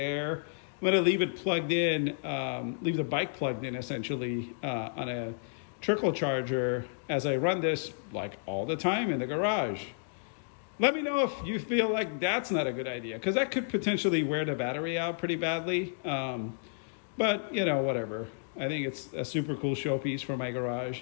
I'm going to leave it plugged in, leave the bike plugged in essentially on a trickle charger as I run this like all the time in the garage. Let me know if you feel like that's not a good idea, because that could potentially wear the battery out pretty badly. But, whatever. I think it's a super cool showpiece for my garage.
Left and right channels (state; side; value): silent; right; digital silence